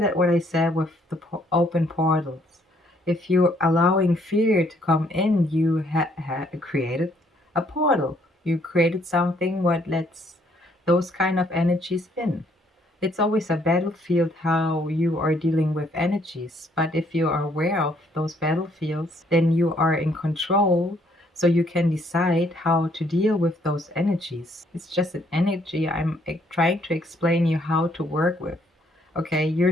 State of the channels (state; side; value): normal; both; correlation 0.67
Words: what I said with the open portals. If you're allowing fear to come in, you created a portal. You created something what lets those kind of energies in. It's always a battlefield how you are dealing with energies. But if you are aware of those battlefields, then you are in control. So you can decide how to deal with those energies. It's just an energy. I'm trying to explain you how to work with. Okay, you're